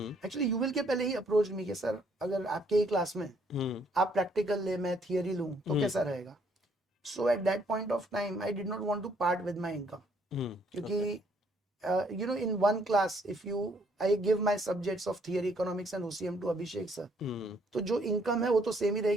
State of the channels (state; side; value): normal; both; correlation 0.67